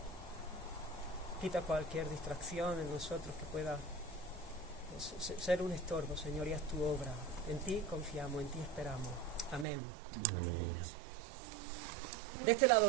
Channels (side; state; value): left; drops out; at 9.7 s